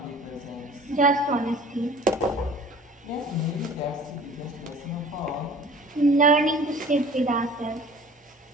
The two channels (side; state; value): both; normal; correlation 0.47